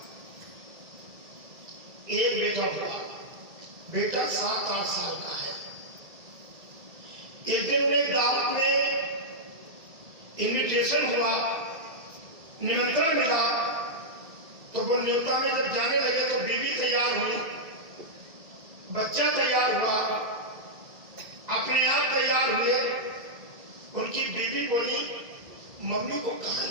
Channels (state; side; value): late; left; 2.6 ms